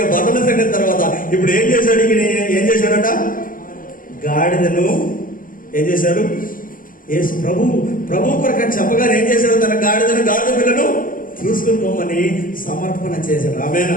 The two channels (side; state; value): right; late; 0.40 ms